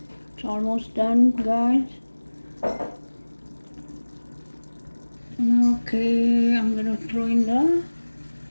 It's almost done, guys. Okay, I'm gonna throw in the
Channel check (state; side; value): inverted; both; correlation -1.00